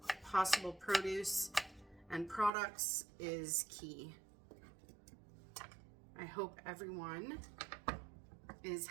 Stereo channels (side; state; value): left; drops out; at 2.5 s